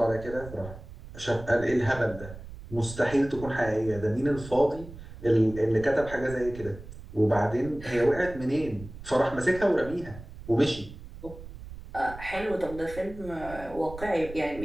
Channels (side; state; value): right; noise; rumble, 14 dB below the sound